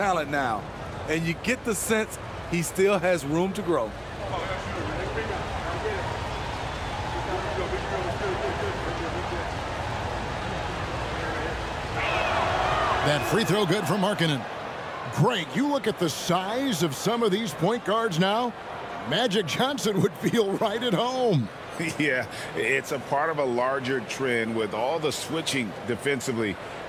now. And you get the sense he still has room to grow. That free throw good for Markkanen. Greg, you look at the size of some of these point guards now. Magic Johnson would feel right at home. Yeah, it's a part of a larger trend with all the switching defensively.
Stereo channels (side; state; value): both; identical; correlation 1.00